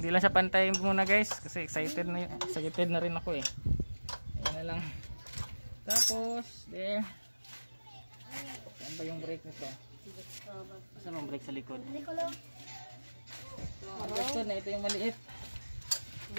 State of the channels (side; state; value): both; inverted; correlation -1.00